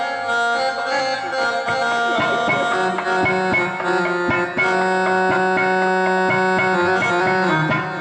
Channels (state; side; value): identical; both; correlation 1.00